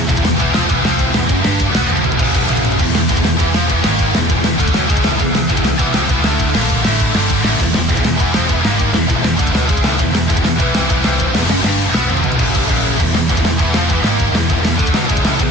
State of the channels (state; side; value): normal; both; correlation 0.53